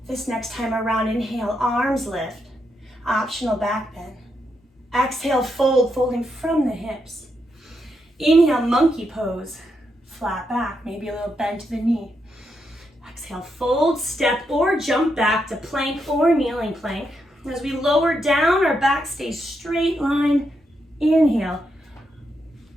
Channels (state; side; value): normal; both; correlation 0.81